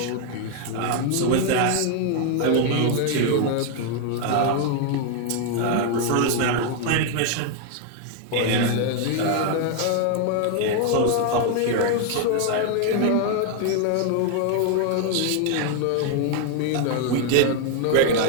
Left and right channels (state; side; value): different; both; correlation 0.01